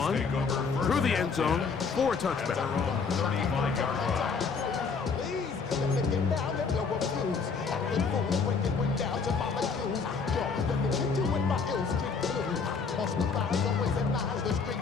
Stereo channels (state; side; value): quieter; right; 5.1 dB